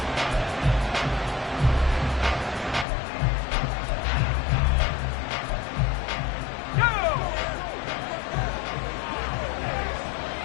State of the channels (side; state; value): right; drops out; at 2.9 s